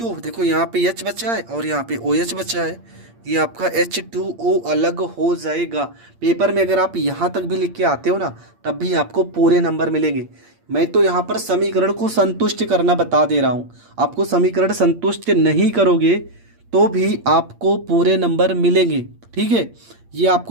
देखो, यहाँ पे H बचा है और यहाँ पे OH बचा है। ये आपका H2O अलग हो जाएगा। पेपर में अगर आप यहाँ तक भी लिख के आते हो ना, तब भी आपको पूरे नंबर मिलेंगे। मैं तो यहाँ पर समीकरण को संतुष्ट करना बता दे रहा हूँ। आपको समीकरण संतुष्ट नहीं करोगे तो भी आपको पूरे नंबर मिलेंगे। ठीक है, ये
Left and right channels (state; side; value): late; left; 8.6 ms